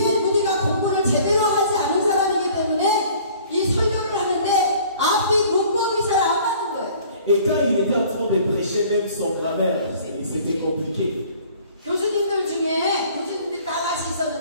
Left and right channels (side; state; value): both; inverted; correlation -0.52